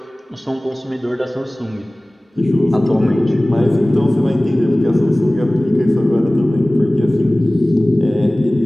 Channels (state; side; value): normal; both; correlation 0.98